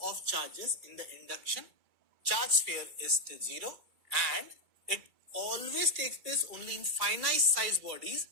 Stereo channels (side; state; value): left; late; 2.2 ms